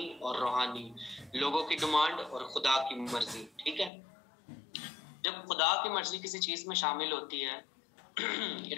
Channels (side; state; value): right; drops out; at 3.9 s